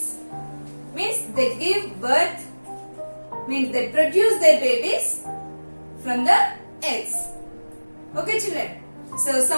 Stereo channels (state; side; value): inverted; both; correlation -1.00